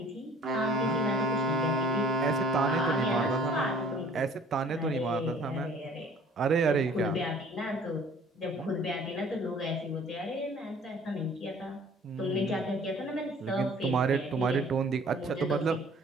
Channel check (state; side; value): normal; both; correlation 0.53